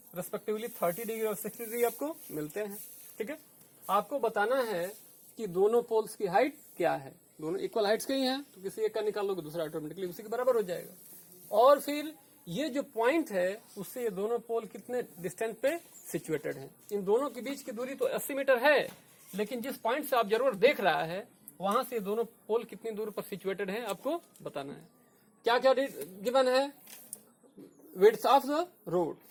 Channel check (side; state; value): both; identical; correlation 1.00